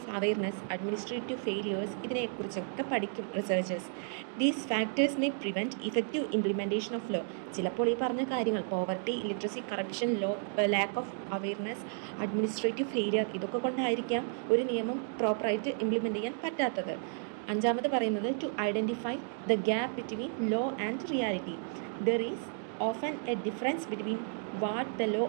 awareness, administrative failures, ഇതിനെക്കുറിച്ചൊക്കെ പഠിക്കും researchers. These factors may prevent effective implementation of law. ചിലപ്പോൾ ഈ പറഞ്ഞ കാര്യങ്ങൾ poverty, illiteracy, corruption, lack of awareness, administrative failure, ഇതൊക്കെ കൊണ്ടായിരിക്കാം ഒരു നിയമം പ്രോപ്പറായിട്ട് ഇംപ്ലിമെൻറ്റ് ചെയ്യാൻ പറ്റാത്തത്. അഞ്ചാമത് പറയുന്നത് to identify the gap between law and reality. There is often a difference between what the law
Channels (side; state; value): left; silent; 56 dB below the other